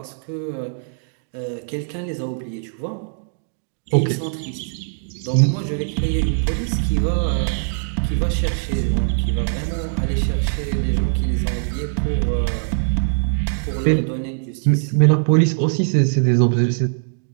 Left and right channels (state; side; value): silent; left; digital silence